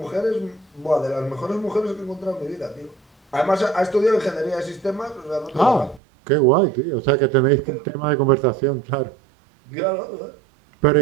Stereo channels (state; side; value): drops out; left; at 6.0 s